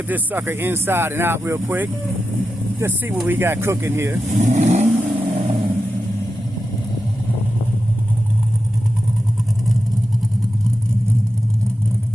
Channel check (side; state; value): both; normal; correlation 0.90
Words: this sucker inside and out real quick. Just see what we got cooking here.